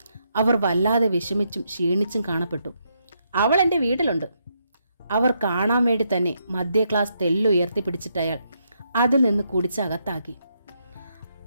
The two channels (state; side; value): inverted; both; correlation -0.78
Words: അവർ വല്ലാതെ വിഷമിച്ചും ക്ഷീണിച്ചും കാണപ്പെട്ടു. അവൾ എൻ്റെ വീട്ടിലുണ്ട്. അവർ കാണാൻ വേണ്ടി തന്നെ മധ്യ ക്ലാസ് തെല്ലുയർത്തി പിടിച്ചിട്ടയാൾ അതിൽ നിന്ന് കുടിച്ചകത്താക്കി.